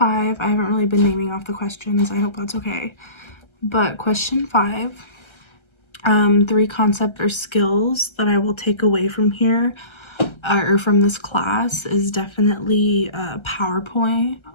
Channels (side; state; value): right; late; 1.3 ms